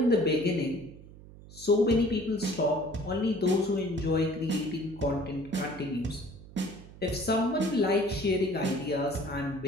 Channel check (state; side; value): noise; right; hum, 19 dB below the sound